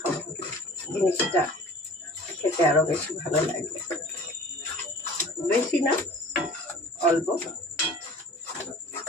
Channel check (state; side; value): normal; both; correlation 0.45